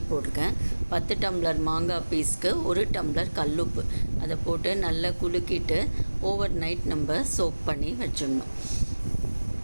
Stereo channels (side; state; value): both; inverted; correlation -1.00